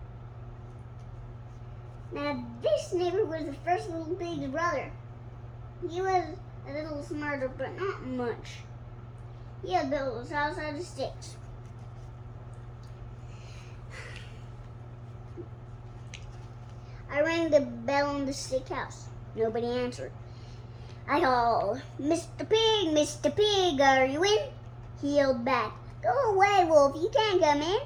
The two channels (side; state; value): both; identical; correlation 1.00